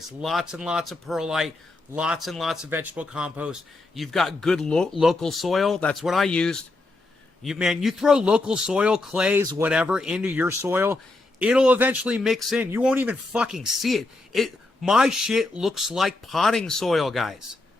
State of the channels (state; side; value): quieter; right; 3.0 dB